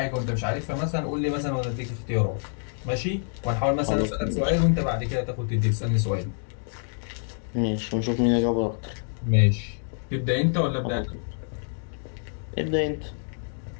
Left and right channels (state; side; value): silent; right; digital silence